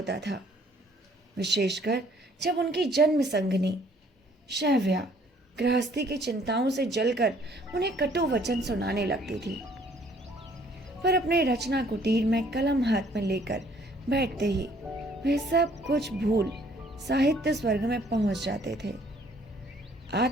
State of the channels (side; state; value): both; normal; correlation 0.60